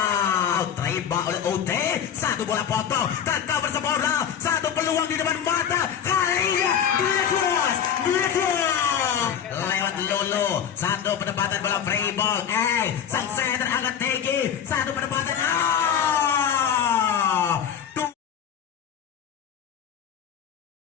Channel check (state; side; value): quieter; right; 8.5 dB